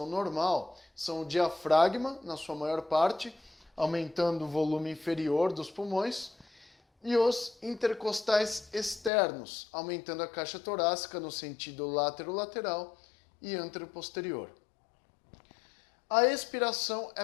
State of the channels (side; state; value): right; drops out; at 9.1 s